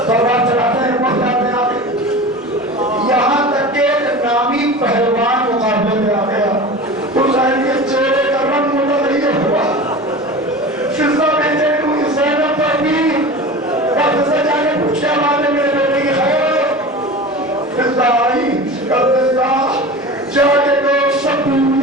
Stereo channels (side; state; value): both; normal; correlation 0.33